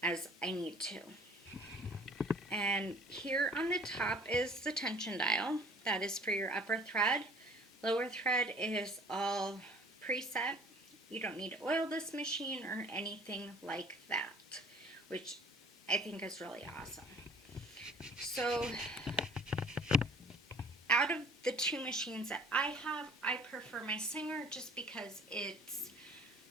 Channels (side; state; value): both; normal; correlation 0.51